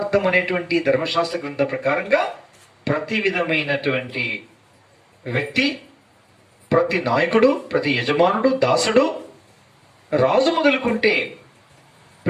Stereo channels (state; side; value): identical; both; correlation 1.00